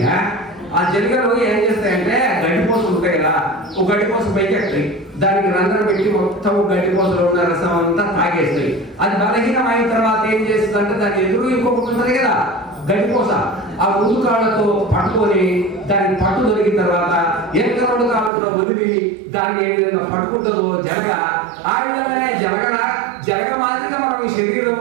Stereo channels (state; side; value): drops out; left; at 18.3 s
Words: ఆ జలగలు ఏం చేస్తాయంటే గడ్డిపోసలు ఉంటాయి కదా, ఒక గడ్డిపోస పైకి ఎక్కుతాయి, దానికి రంధ్రం పెట్టి మొత్తం గడ్డిపోసలో ఉన్న రసం అంతా తాగేస్తాయి. అది బలహీనం అయిన తర్వాత ఏం చేస్తుంది అంటే దాని ఎదురు ఇంకొకటి ఉంటుంది కదా గడ్డిపోస, ఆ ముందు కాళ్ళతో పట్టుకొని దానికి పట్టు దొరికిన తర్వాత ఎంత రెండు కాళ్ళతో వదిలి దాన్ని ఏ విధంగా పట్టుకుంటుందో జలగ, ఆ విధంగానే జలగ మాదిరిగా మనం ఈ